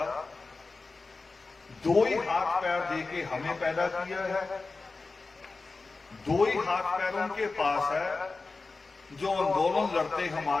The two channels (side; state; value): right; quieter; 3.8 dB